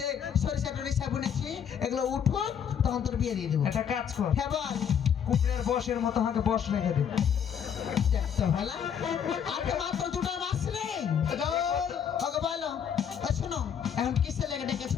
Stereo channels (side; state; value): right; quieter; 8.1 dB